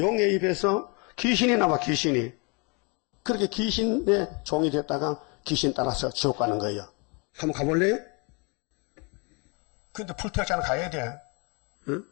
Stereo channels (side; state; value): right; quieter; 32.4 dB